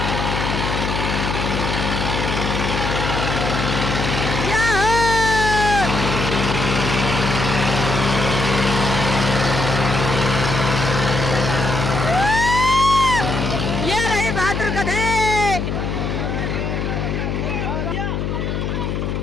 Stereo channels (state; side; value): noise; left; hum, 2 dB below the sound